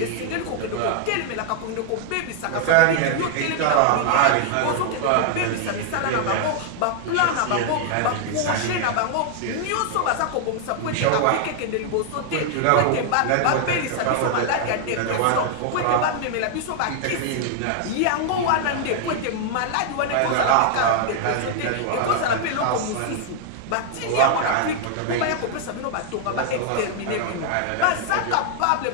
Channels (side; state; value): both; different; correlation 0.00